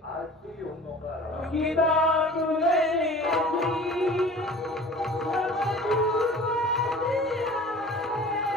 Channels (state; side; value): normal; both; correlation 0.43